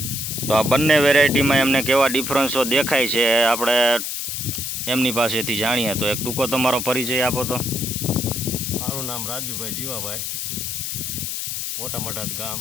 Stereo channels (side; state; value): left; noise; hiss, 3 dB below the sound